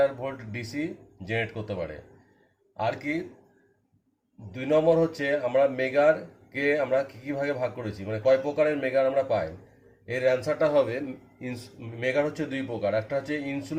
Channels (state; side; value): identical; both; correlation 1.00